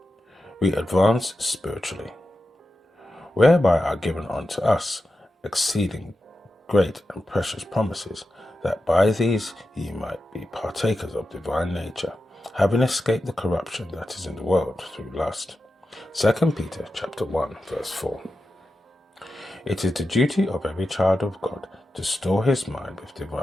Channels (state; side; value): normal; both; correlation 0.91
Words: We advance spiritually, whereby are given unto us exceeding great and precious promises, that by these ye might be partakers of divine nature, having escaped the corruption that is in the world through lust. 2 Peter chapter 1 verse 4. It is the duty of every child of God to store his mind with